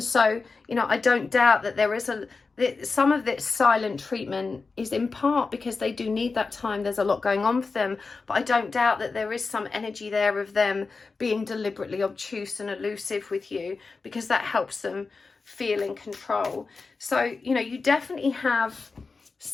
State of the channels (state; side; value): quieter; right; 4.3 dB